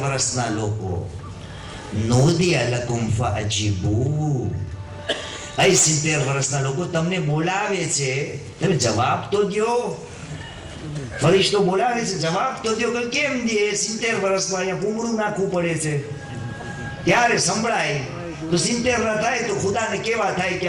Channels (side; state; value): both; identical; correlation 1.00